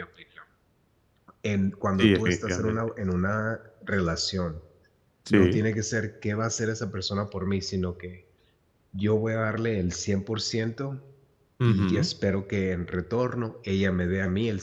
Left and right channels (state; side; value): identical; both; correlation 1.00